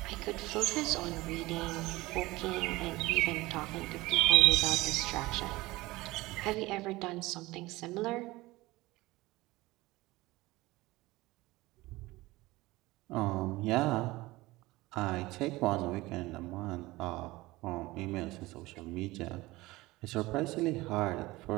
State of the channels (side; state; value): left; quieter; 20.0 dB